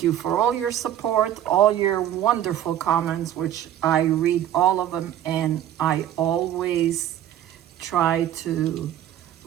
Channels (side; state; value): left; quieter; 11.4 dB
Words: you for all your support, all your wonderful comments, which I read all of them, and I always try to